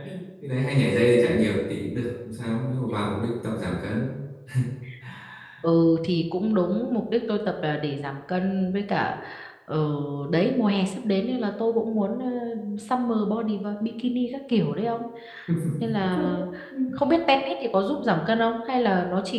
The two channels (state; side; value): identical; both; correlation 1.00